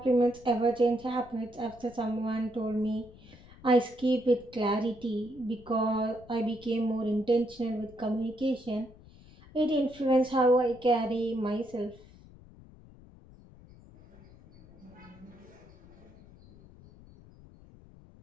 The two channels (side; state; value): left; noise; rumble, 22 dB below the sound